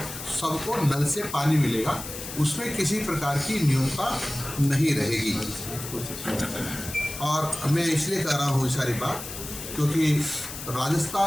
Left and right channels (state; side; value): noise; left; hiss, 9 dB below the sound